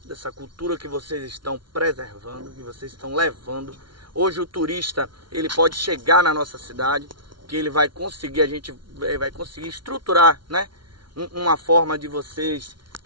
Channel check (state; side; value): late; left; 0.73 ms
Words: dessa cultura que vocês estão preservando, que vocês estão levando. Hoje o turista, ele pode chegar na nossa cidade, que ele vai conseguir, a gente vai conseguir estruturar, né, uma forma de vocês